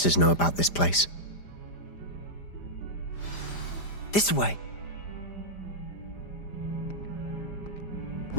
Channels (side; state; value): right; late; 5.0 ms